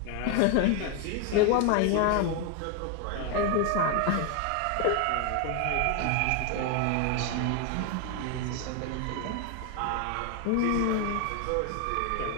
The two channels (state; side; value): different; both; correlation 0.01